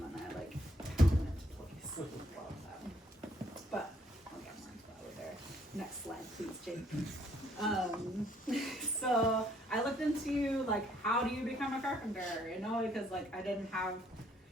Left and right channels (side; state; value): both; normal; correlation 0.66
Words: and I like put them into place. But I'll get more into that later. Next slide, please, Jake. So I looked into like how do you become a carpenter, you know, because like I didn't have